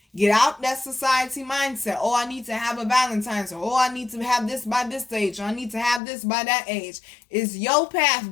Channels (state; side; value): drops out; right; at 6.0 s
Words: Get out that society mindset. Oh, I need to have a Valentine's. Or, oh, I need to have this by this age. Or I need to have this by that age. It's your path,